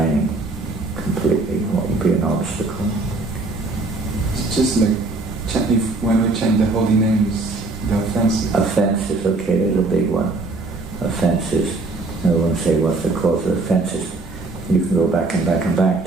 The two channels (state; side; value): quieter; left; 3.4 dB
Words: completely? What would be an obstacle? It's just like when we chant the holy names, the offenses. Offenses, okay, there's a big one. Offenses. I won't say what's the cause of offenses. You can go back and back and back